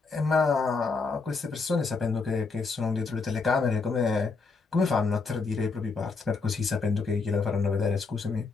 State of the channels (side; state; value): right; quieter; 4.4 dB